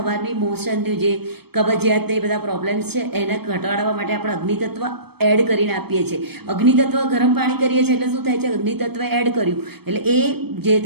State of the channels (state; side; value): late; left; 0.97 ms